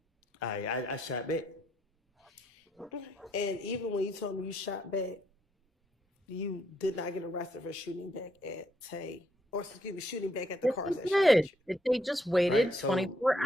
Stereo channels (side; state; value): both; normal; correlation 0.73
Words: I shot back. And even when you told me you shot back, you did not get arrested for shooting back at Tay, or excuse me, shooting back at the cars that shot at you. They just waited Right, so 24